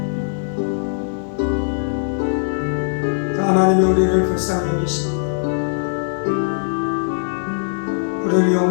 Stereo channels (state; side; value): silent; right; 66 dB below the other